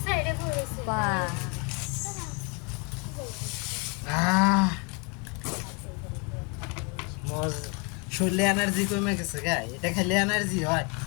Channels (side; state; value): right; quieter; 32.0 dB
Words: শরীরে এনার্জি কমে গেছে গা, এটা খেলে এনার্জি হয়।